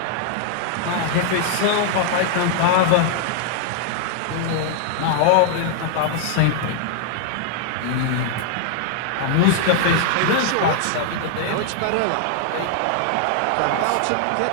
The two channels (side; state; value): both; different; correlation 0.00